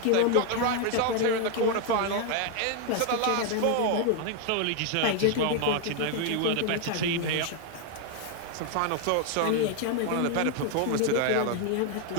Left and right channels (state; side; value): different; both; correlation 0.01